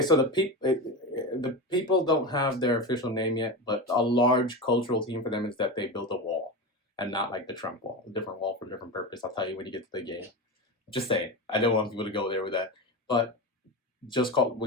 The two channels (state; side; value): normal; both; correlation 0.22